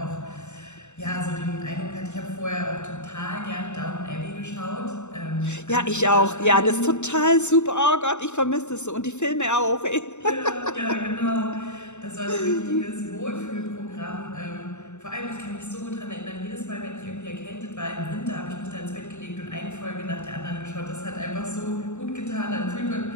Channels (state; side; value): late; right; 0.83 ms